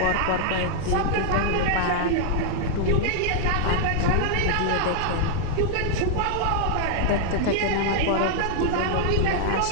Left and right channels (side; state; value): both; different; correlation -0.01